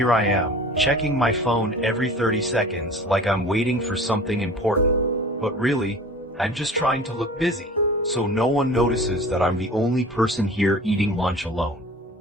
I am, checking my phone every 30 seconds like I'm waiting for something important. But really, I'm just trying to look busy, so no one notices that I'm the only person here eating lunch alone.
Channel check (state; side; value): normal; both; correlation 0.41